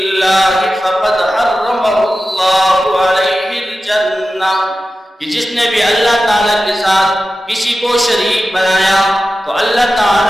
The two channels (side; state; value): both; normal; correlation 0.93